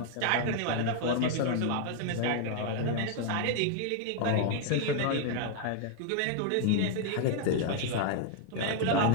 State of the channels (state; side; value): different; both; correlation 0.00